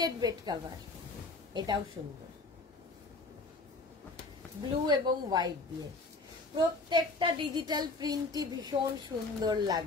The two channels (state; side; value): quieter; right; 3.5 dB